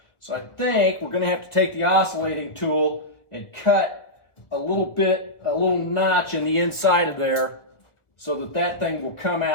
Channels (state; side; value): late; right; 1.5 ms